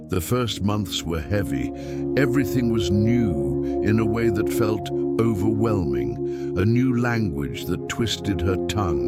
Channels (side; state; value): both; identical; correlation 1.00